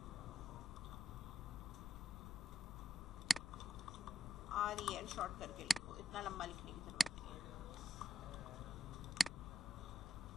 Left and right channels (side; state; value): left; noise; rumble, 10 dB below the sound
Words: REL शॉर्ट करके लिखो, इतना लंबा लिखने की जरूरत नहीं है।